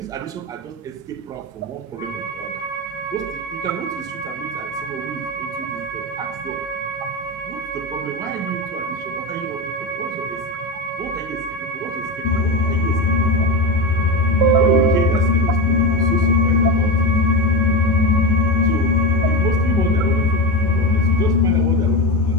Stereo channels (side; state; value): both; normal; correlation 0.19